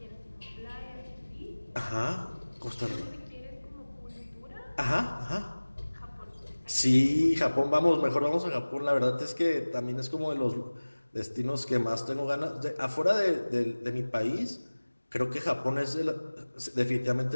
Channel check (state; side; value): inverted; both; correlation -1.00